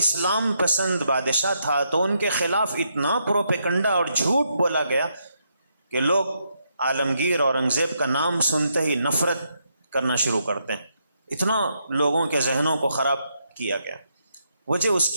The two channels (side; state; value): both; inverted; correlation -0.78